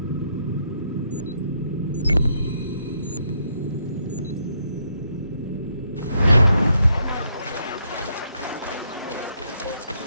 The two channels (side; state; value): both; inverted; correlation -0.75